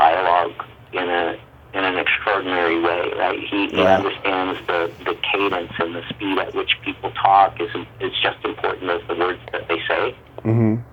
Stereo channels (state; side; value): identical; both; correlation 1.00